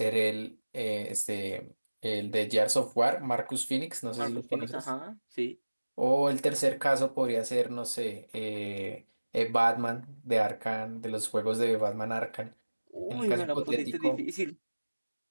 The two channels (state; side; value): inverted; both; correlation -1.00